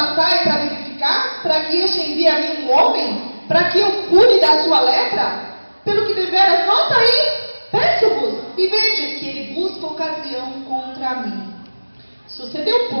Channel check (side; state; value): both; inverted; correlation -1.00